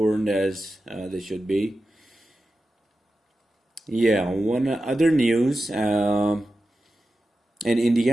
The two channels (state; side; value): normal; both; correlation 0.92